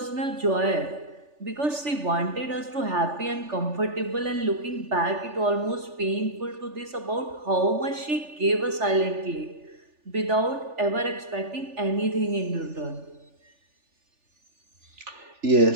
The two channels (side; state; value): left; late; 3.4 ms